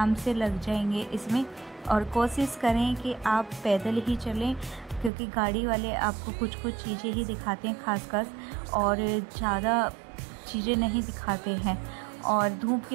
से लग जाएंगे इसमें। और कोशिश करें कि आप पैदल ही चलें, क्योंकि गाड़ी वाले आपको कुछ कुछ चीज़ें ही दिखाते हैं खासकर, और ज़्यादा चीज़ें नहीं दिखाते हैं। और धूप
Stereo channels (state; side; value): drops out; left; at 5.1 s